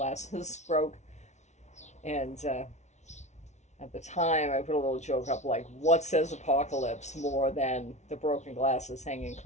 broke. And at the time, I put a little joke up like, what says apocalypse more than the broken glasses hanging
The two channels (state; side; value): late; right; 0.33 ms